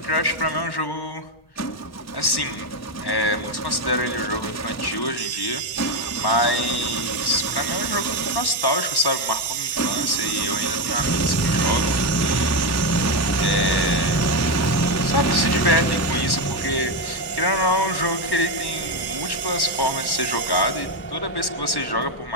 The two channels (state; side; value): late; right; 1.1 ms